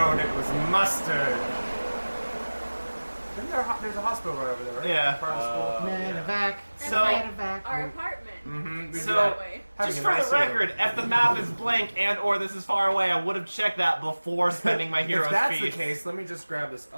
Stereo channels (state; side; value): inverted; both; correlation -1.00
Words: it was mustard. There's a hospital right over there, right? Yeah. Part of the school. Medevac. So- Medevac. Our apartment. Mm-hmm. So, way. just for the record, if the map is blank and/or this is far away, I would have checked that before spending my hero's If that's feast. the case, let me just grab this